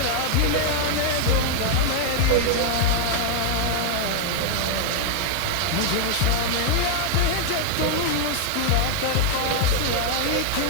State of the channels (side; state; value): both; different; correlation 0.00